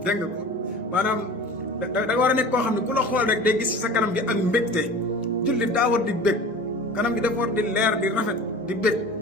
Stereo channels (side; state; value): both; normal; correlation 0.38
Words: dégg nga ko maanaam da nga war a nekk koo xam ne ku la xool rek day gis sa kanam gi ak mbégte. jullit daa war di bég, kanam gi dafa war di leer di rafet di bég.